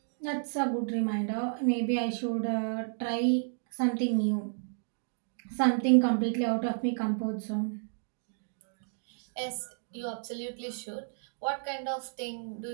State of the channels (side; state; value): left; silent; digital silence